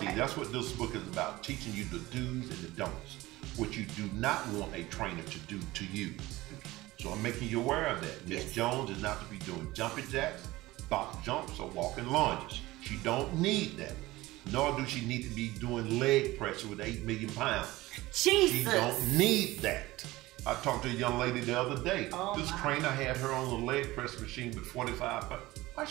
See, that's what this book is about, teaching you the do's and the don'ts, what you do not want a trainer to do to you. So I'm making you aware of that. Miss Jones is not to be doing jumping jacks, box jumps, or walking lunges. She don't need that. Nor do she need to be doing leg press with 8 million pounds. Jesus. She don't need that. I talked to a young lady the other day. This trainer had her on the leg press machine with 45 pounds. Why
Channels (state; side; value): quieter; left; 18.8 dB